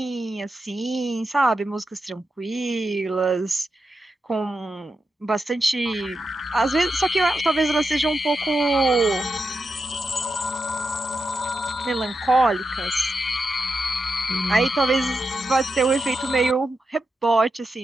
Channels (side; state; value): both; normal; correlation 0.87